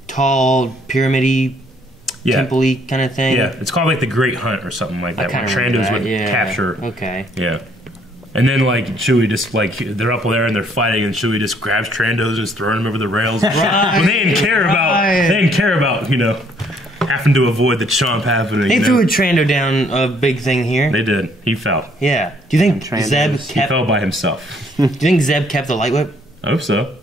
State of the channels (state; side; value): normal; both; correlation 0.65